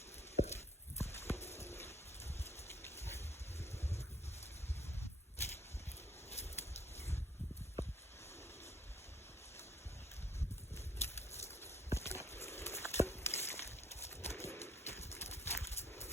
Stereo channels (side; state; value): both; normal; correlation 0.64